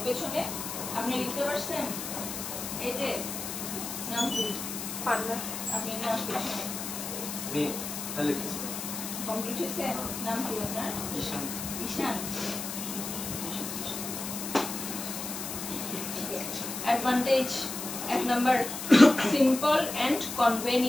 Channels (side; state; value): left; noise; hiss, 6 dB below the sound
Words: পেছনে আপনি লিখতে পারছেন এই যে নাম কি পান্না আপনি নাম পেছনে আমি তাহলে কিছু কমপ্লিট হয়েছে নাম কি আপনার ঈশান ঈশান advantage এক number simple and